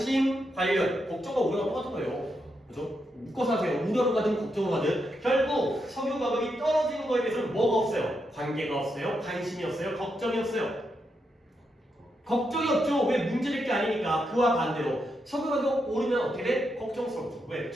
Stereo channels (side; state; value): both; normal; correlation 0.83